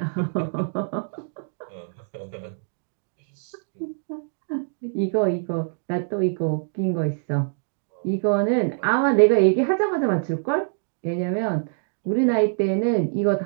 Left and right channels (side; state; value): left; silent; digital silence